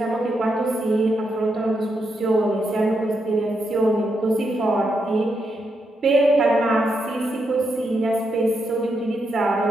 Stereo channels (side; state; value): both; normal; correlation 0.82